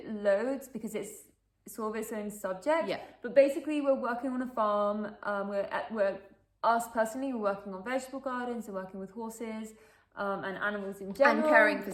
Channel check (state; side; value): identical; both; correlation 1.00